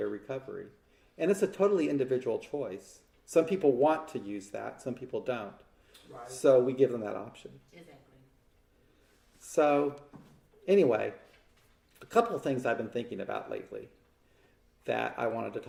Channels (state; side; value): identical; both; correlation 1.00